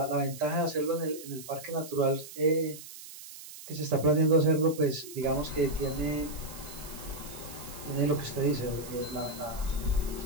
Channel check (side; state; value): right; noise; hiss, 14 dB below the sound